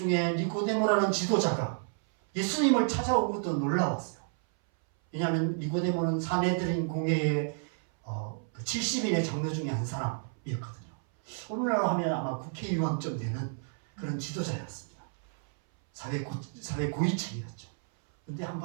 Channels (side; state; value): left; silent; 57 dB below the other